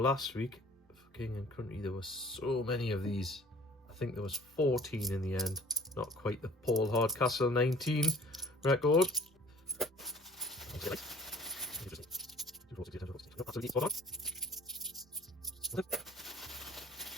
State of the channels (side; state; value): both; normal; correlation 0.51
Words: week, for King and Country, there were so many of these. I think there was 14 in the end. Not quite the Paul Hardcastle 19 record.